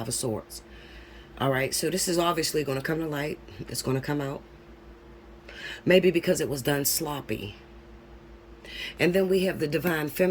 of Swords. All right. So this is obviously going to come to light. It's going to come out. Maybe because it was done sloppy. And then we have the divine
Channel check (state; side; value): identical; both; correlation 1.00